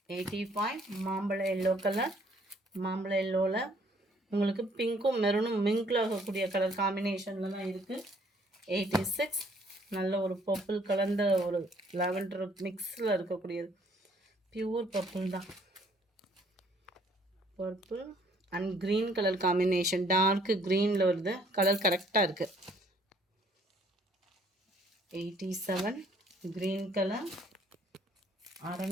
85 மாம்பழ எல்லோ கலர். மாம்பழ எல்லோவில் உங்களுக்கு பிங்க்கும் மெரூனும் மிங்கில் ஆகக்கூடிய கலர் காம்பினேஷனில் தான் இருக்குது. 86 நல்ல ஒரு பர்பிள் கலந்த ஒரு லாவெண்டர் மிக்ஸில் இருக்கக்கூடியது. பியூர் பர்பிள் தான். Purple and green colour combination, dark க்ரீனில் வருது. கலர் கரெக்டாக இருக்குது. 87 க்ரீன் கலர்.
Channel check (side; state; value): both; normal; correlation 0.62